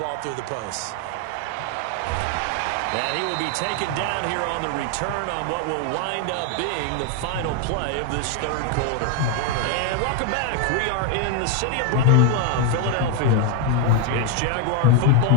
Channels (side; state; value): both; different; correlation 0.01